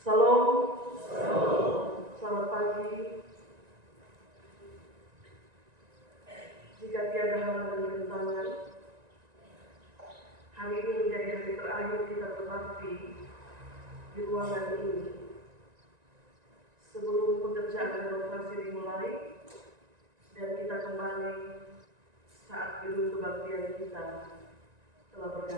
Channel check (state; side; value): late; left; 1.9 ms